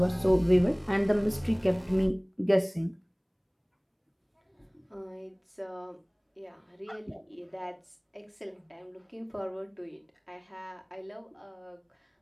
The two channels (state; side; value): identical; both; correlation 1.00